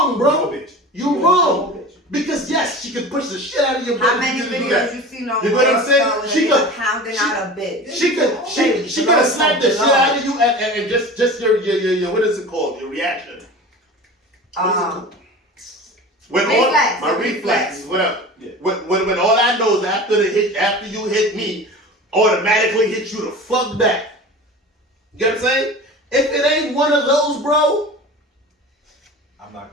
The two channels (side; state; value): both; normal; correlation 0.35